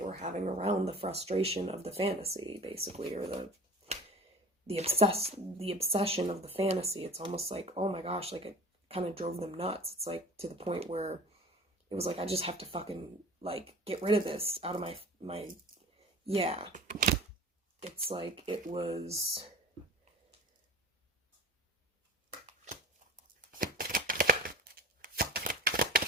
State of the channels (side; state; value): both; normal; correlation 0.40